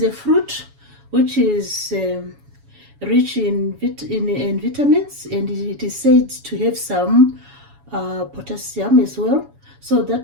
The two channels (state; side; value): late; left; 7.1 ms